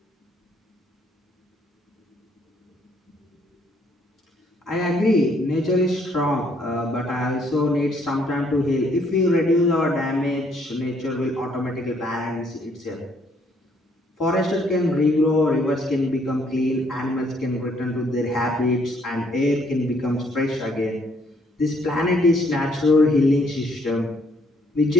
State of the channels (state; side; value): normal; both; correlation 0.67